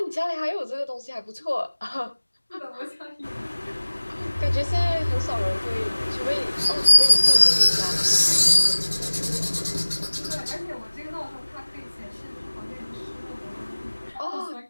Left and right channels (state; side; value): inverted; both; correlation -1.00